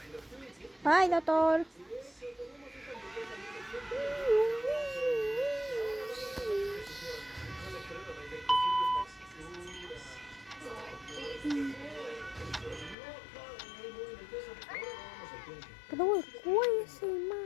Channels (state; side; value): drops out; right; at 13.0 s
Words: Ay, doctor. Pero el cuello es